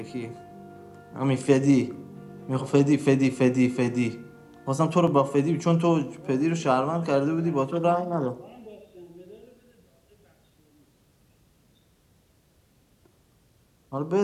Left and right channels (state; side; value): identical; both; correlation 1.00